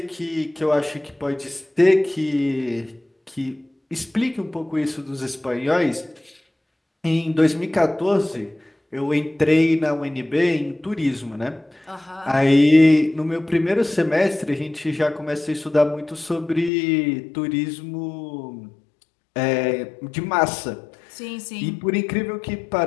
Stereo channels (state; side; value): drops out; right; at 16.7 s